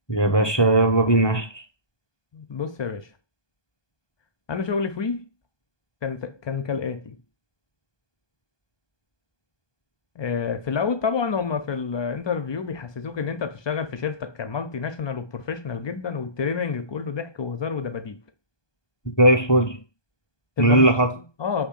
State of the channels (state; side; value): late; right; 1.2 ms